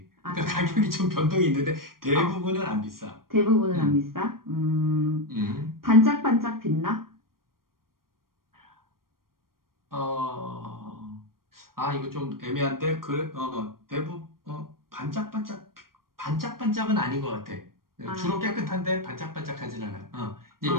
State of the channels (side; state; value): left; late; 0.92 ms